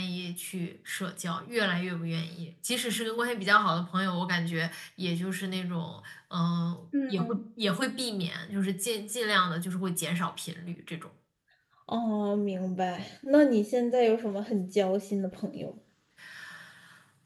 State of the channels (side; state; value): both; identical; correlation 1.00